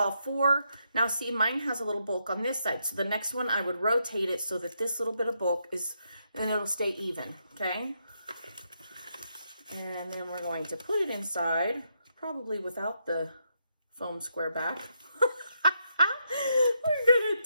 4, now see, mine has a little bulk on this side, so the next one I would rotate it so that this little bit of bulk is, and it'll stay even, okay? And then we're going to put it inside, probably without the foam square back. We're going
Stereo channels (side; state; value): both; inverted; correlation -0.80